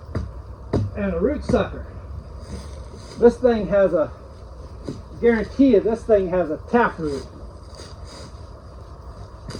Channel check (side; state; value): both; identical; correlation 1.00